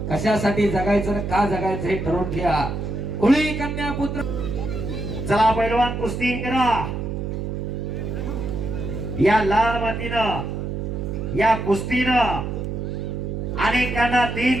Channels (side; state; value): right; noise; hum, 4 dB below the sound